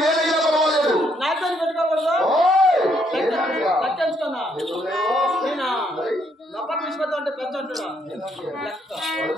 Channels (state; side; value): normal; both; correlation 0.71